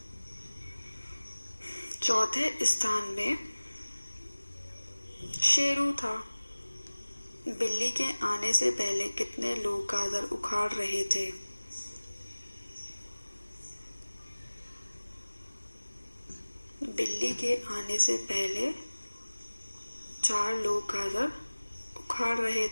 चौथे स्थान में शेरू था। बिल्ली के आने से पहले कितने लोग गाजर उखाड़ रहे थे? बिल्ली के आने से पहले 4 लोग गाजर उखाड़ रहे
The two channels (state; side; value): inverted; both; correlation -1.00